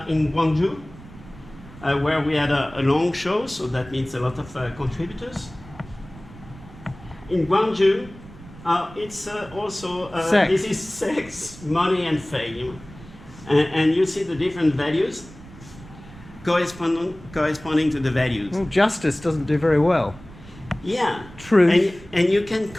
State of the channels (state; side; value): noise; right; rumble, 19 dB below the sound